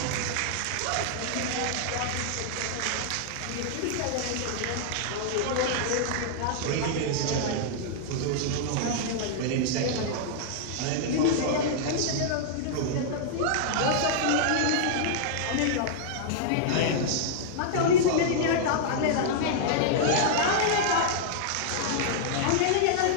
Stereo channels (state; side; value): different; both; correlation -0.01